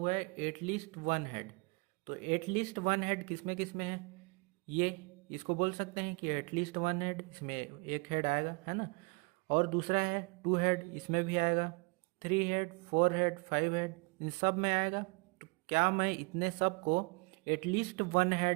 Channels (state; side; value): quieter; left; 30.1 dB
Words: है, एटलीस्ट 1 हेड। तो एटलीस्ट 1 हेड किसमें है, ये इसको बोल सकते हैं कि एटलीस्ट 1 हेड, इसमें एक हेड आएगा, है ना। और दूसरा है 2 हेड, इसमें भी आएगा, 3 हेड, 4 हेड, 5 हेड, इन सब में आएगा। तो क्या मैं इतने सब को एटलीस्ट 1